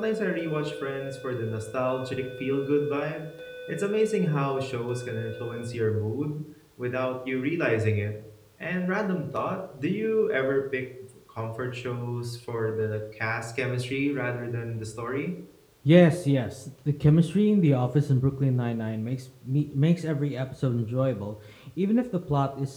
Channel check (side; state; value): both; identical; correlation 1.00